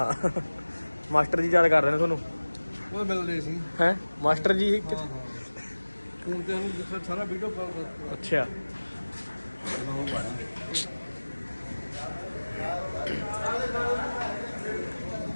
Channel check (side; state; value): both; inverted; correlation -1.00